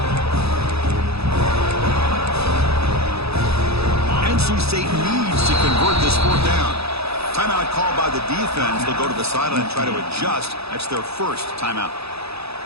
NC State needs to convert this fourth down. Timeout called by the defense. They'll go to the sideline and try to adjust. That's their first timeout.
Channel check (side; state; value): left; late; 0.78 ms